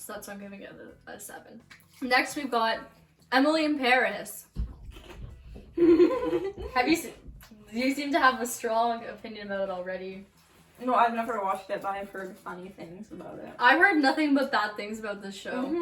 that's why I'm giving it a 7. Next, we've got Emily in Paris. Have you seen? You seem to have a strong opinion about it already. No, I've never watched it, but I've heard funny things about it. I've heard nothing but bad things about this show.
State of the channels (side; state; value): both; identical; correlation 1.00